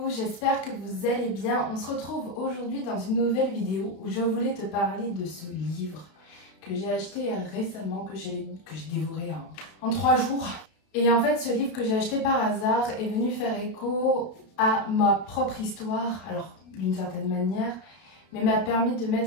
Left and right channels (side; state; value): right; late; 32 ms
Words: j'espère que vous allez bien. On se retrouve aujourd'hui dans une nouvelle vidéo où je voulais te parler de ce livre que j'ai acheté récemment, que j'ai dévoré en 3 jours. Et en fait, ce livre que j'ai acheté par hasard est venu faire écho à ma propre histoire, alors d'une certaine manière, mais m'a permis de